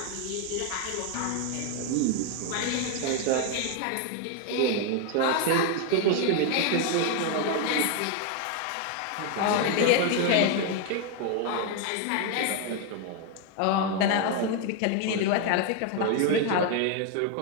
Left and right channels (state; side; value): different; both; correlation 0.01